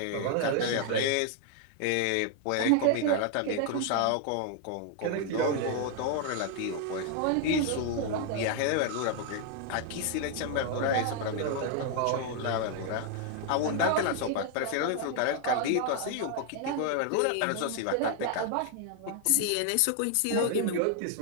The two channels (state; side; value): different; both; correlation 0.00